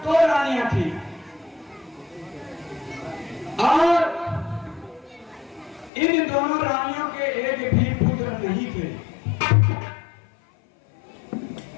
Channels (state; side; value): drops out; right; at 5.9 s